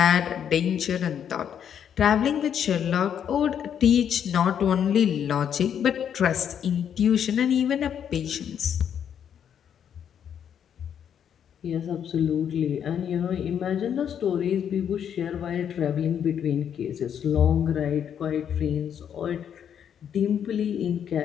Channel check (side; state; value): right; quieter; 8.7 dB